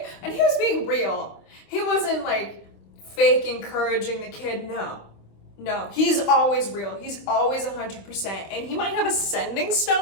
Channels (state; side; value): late; right; 26 ms